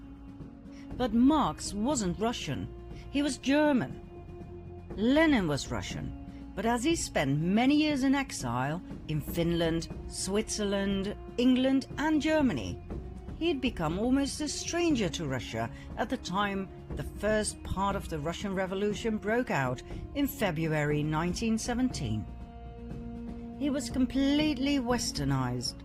But Marx wasn't Russian, he was German. Lenin was Russian, but as he spent many years in exile in Finland, Switzerland, England and Germany, he had become almost a stranger to Russia at the time the first part of the Russian Revolution broke out in February 1917. He was completely westernized.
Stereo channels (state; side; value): identical; both; correlation 1.00